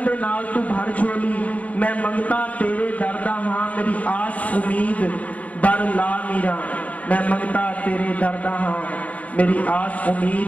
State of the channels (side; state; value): right; late; 0.069 ms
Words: दे नाल तू भर झोली। मैं मंगता तेरे दरदा हां मेरी आस उम्मीद बर ला मीरा। मैं मंगता तेरे दरदा हां मेरी आस